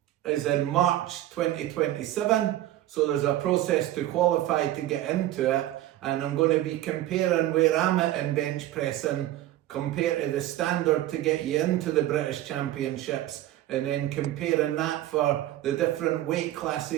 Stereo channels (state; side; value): quieter; left; 14.1 dB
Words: is in March 2027. So there's a process to qualify to get into it, and I'm going to be comparing where I'm at in bench pressing compared to the standard to get you into the British Championships, and then comparing that for the different weight